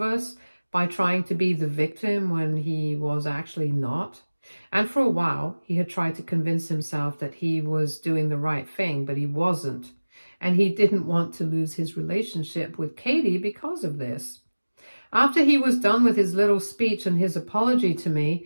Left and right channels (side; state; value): both; inverted; correlation -1.00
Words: us by trying to be the victim when he was actually not. And for a while, he had tried to convince himself that he was doing the right thing, but he wasn't. And he didn't want to lose his relationship with Katie because of this. After he was done with his little speech and his apology to